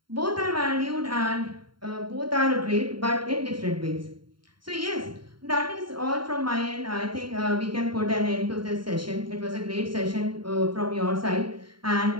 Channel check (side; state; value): left; late; 0.73 ms